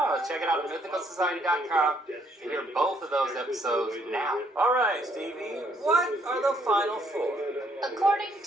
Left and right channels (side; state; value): both; normal; correlation 0.69